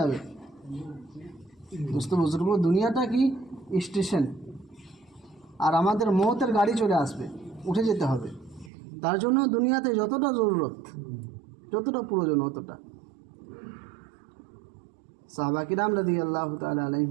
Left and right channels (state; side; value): drops out; left; at 8.7 s